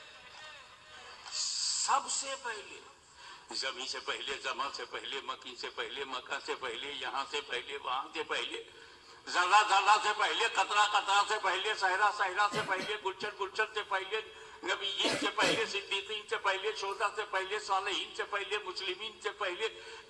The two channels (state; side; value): identical; both; correlation 1.00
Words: زمین سے پہلے، زمان سے پہلے، مکی سے پہلے، مکہ سے پہلے، یہاں سے پہلے، وہاں سے پہلے، ذرہ ذرہ سے پہلے، قطرہ قطرہ سے پہلے، صحرا صحرا سے پہلے، گلشن گلشن سے پہلے، نبیین سے پہلے، صدیقین سے پہلے، شہداء سے پہلے، صالحین سے پہلے، مسلمین سے پہلے،